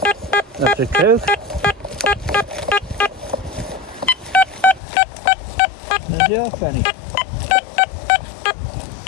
That's a Coke. There's the half penny.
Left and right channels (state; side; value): drops out; right; at 4.8 s